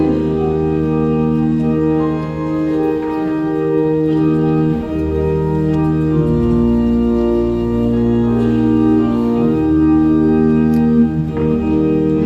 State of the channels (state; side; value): identical; both; correlation 1.00